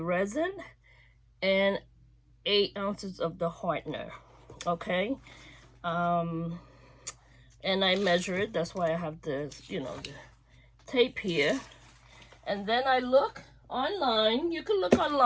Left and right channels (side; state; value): both; identical; correlation 1.00